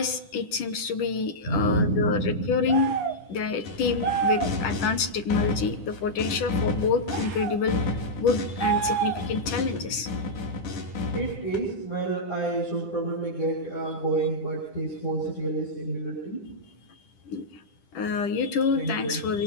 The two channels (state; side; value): late; right; 10 ms